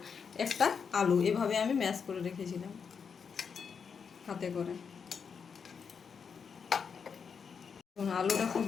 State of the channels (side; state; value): right; quieter; 6.3 dB